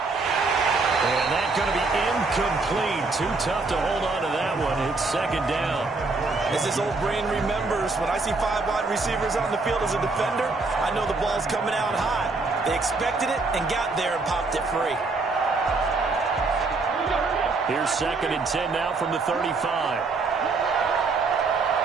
And that's going to be incomplete. Too tough to hold on to that one. It's 2nd down. As his old brain remembers, when I see 5 wide receivers on the field as a defender, I know the ball's coming out high. They expected it and got there and popped it free. Here's 2nd and 10 now from the 35.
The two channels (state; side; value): quieter; left; 3.8 dB